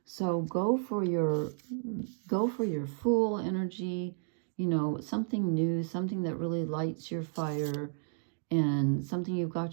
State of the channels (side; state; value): left; silent; digital silence